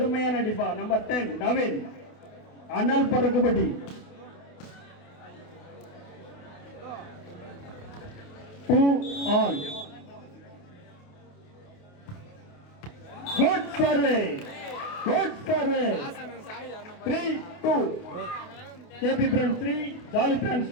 அடிப்பா. நம்பர் 10 நவீன். அனல் பறக்குபடி. All. Good survey. Good survey. 3-2. KP Friends 3, Jolly Friends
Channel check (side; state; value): right; late; 28 ms